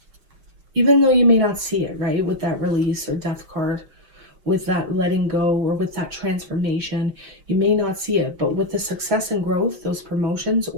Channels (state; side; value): late; left; 5.6 ms